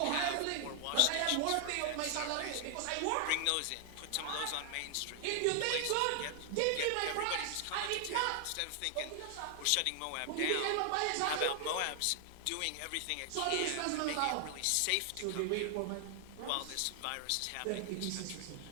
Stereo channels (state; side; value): different; both; correlation 0.00